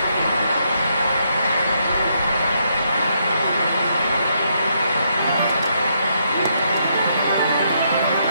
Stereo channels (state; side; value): inverted; both; correlation -0.76